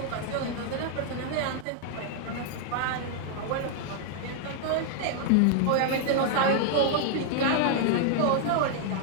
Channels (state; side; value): different; both; correlation 0.00